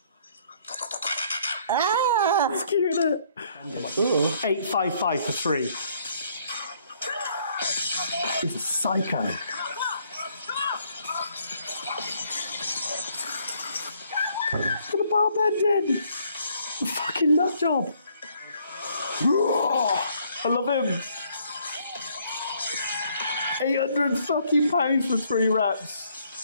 It's cute, isn't it? 855 for 3. He's a psycho. Got a bar bend in. Fucking nut job. I love him. 800 fucking pounds for 3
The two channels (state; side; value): inverted; both; correlation -0.66